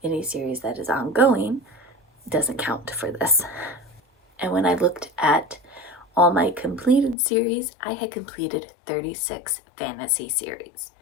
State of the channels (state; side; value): drops out; right; at 7.2 s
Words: any series that is ongoing doesn't count for this. And when I looked at all my completed series, I had completed 36 fantasy series.